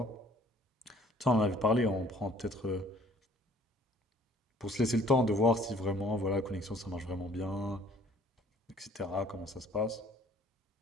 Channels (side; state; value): both; normal; correlation 0.56